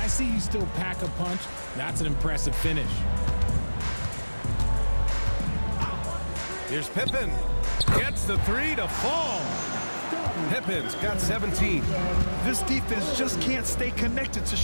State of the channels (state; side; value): inverted; both; correlation -1.00